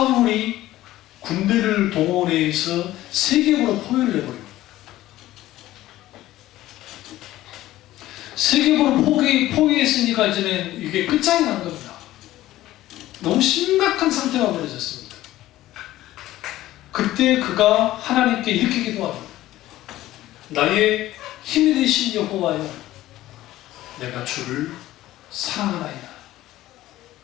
군대를 동원해서 세겜으로 포위를 해버립니다. 세겜으로 포위했으니까 이제는 이게 끝장이 난 겁니다. 너무 심각한 상태가 벌어졌습니다. 그때 그가 하나님께 이렇게 기도합니다. 나의 힘이 되신 여호와여, 내가 주를 사랑하나이다.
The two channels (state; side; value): quieter; right; 15.3 dB